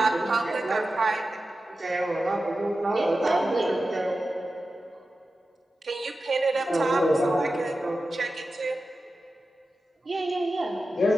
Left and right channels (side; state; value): both; normal; correlation 0.93